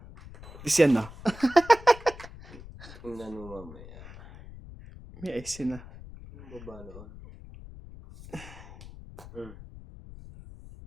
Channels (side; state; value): left; noise; rumble, 16 dB below the sound